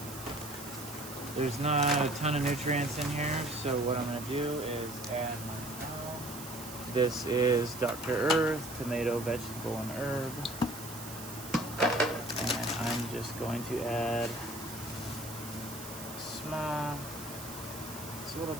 There's not a ton of nutrients in here, so what I'm going to do is add my own. This is Dr. Earth, tomato, vegetable, and herb. And I'm just going to add small, it's a little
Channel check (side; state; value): right; noise; hiss, 12 dB below the sound